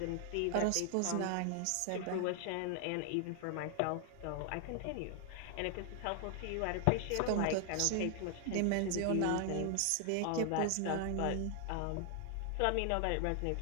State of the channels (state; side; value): different; both; correlation 0.00